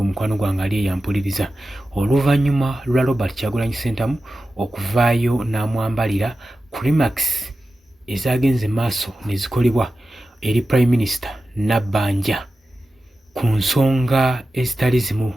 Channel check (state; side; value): normal; both; correlation 0.93